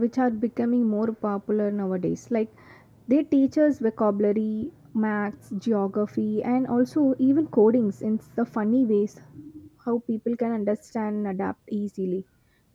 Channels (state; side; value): identical; both; correlation 1.00